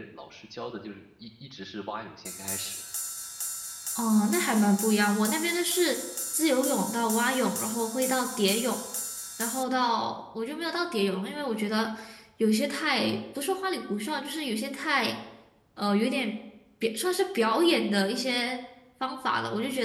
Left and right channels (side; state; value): both; identical; correlation 1.00